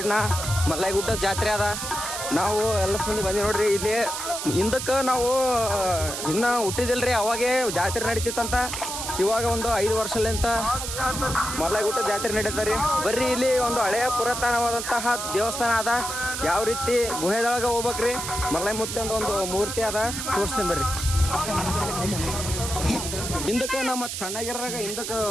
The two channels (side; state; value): right; noise; hiss, 5 dB below the sound